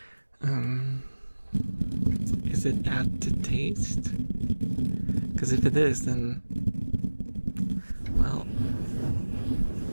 Is it add to taste? Because if it is, then, well,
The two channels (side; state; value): both; inverted; correlation -1.00